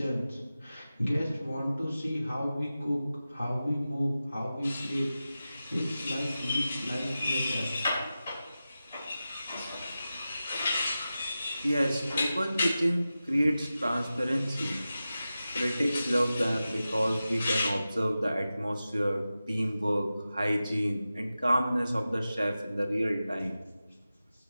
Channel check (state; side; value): inverted; both; correlation -0.94